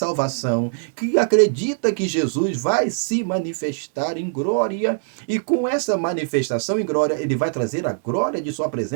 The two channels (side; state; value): left; silent; digital silence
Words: que acredita que Jesus vai se manifestar em glória, e com essa manifestação em glória, ele vai trazer a glória de sua